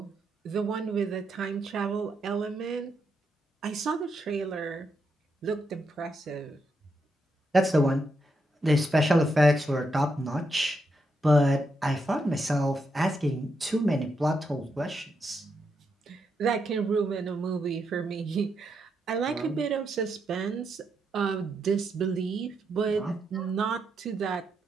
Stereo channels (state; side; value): normal; both; correlation 0.81